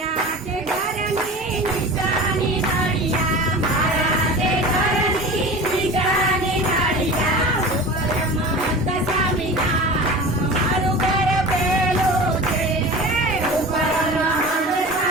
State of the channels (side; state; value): both; normal; correlation 0.35